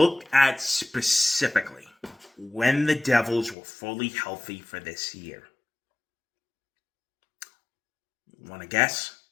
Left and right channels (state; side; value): drops out; right; at 3.6 s